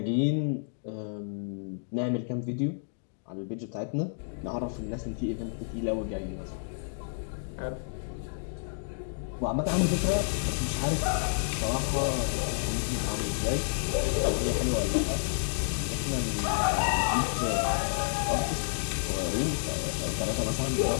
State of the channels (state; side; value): silent; right; digital silence